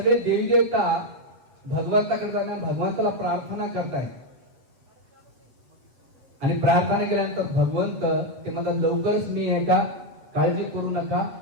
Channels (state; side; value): late; left; 7.8 ms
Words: देवी देवता भगवंताकडे जाणार, भगवंताला प्रार्थना करतायत. आणि प्रार्थना केल्यानंतर भगवंत ते म्हणतात लवकरच मी आहे का, काळजी करू नका.